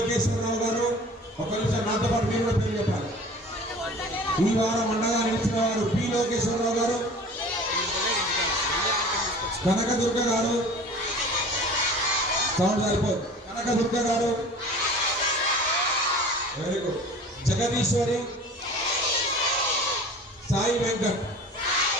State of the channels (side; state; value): both; normal; correlation 0.42